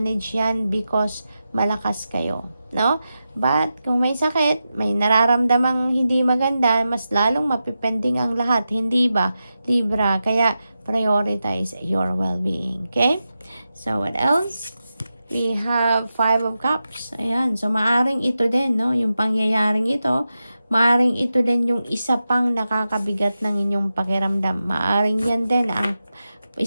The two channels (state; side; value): inverted; both; correlation -0.90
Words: yan because malakas kayo, no? But kung may sakit, may nararamdamang hindi maganda, mas lalong mapipending ang lahat, hindi ba, Libra? Kaya prioritize your well-being, okay? So, what else? We have Five of Cups. Ayan. So, maaring ito din, no? Yung pangyayaring ito, maaring ito din yung isa pang nakakabigat ng inyong pakiramdam. Maaring yan din ang